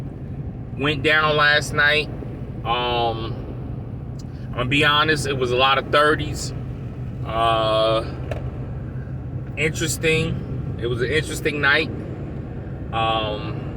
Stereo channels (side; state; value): both; identical; correlation 1.00